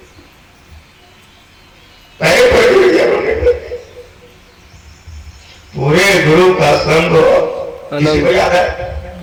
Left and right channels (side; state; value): both; identical; correlation 1.00